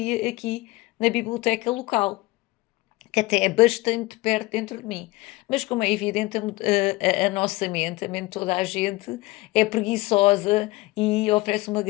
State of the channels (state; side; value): quieter; right; 20.5 dB